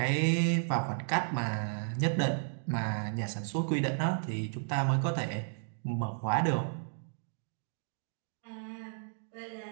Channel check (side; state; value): left; silent; digital silence